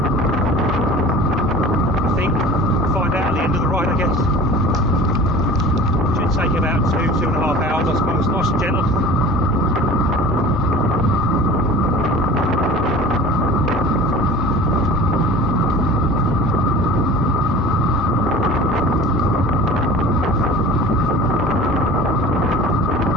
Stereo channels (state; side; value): normal; both; correlation 0.40